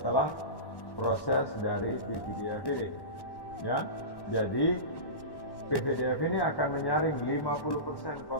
proses dari PVDF ini. Ya, jadi PVDF ini akan menyaring 50%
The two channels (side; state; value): right; late; 1.1 ms